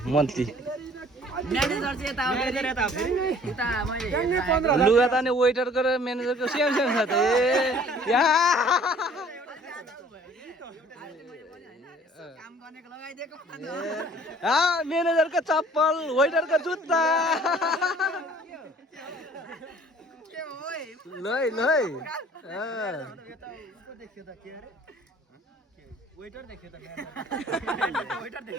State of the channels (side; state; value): both; normal; correlation 0.53